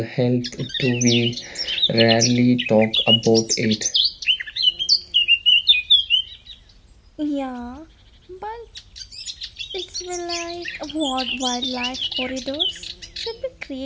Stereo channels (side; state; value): both; identical; correlation 1.00